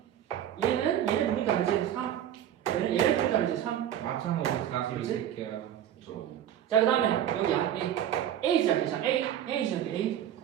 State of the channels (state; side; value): quieter; left; 10.6 dB